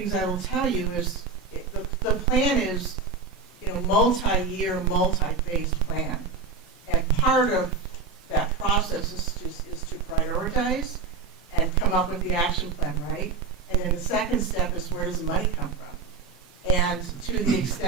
I will tell you is the plan is, multi-year, multi-phased plan. And part of that process is to prioritize and come up with the action plan, right? And then the second step is, where does the money come from? And to the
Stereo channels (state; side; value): quieter; left; 4.8 dB